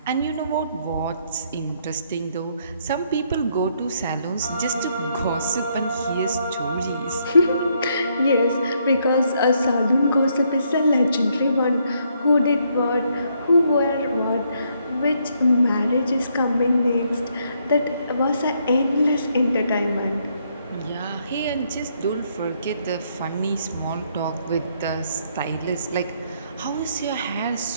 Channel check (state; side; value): inverted; both; correlation -0.72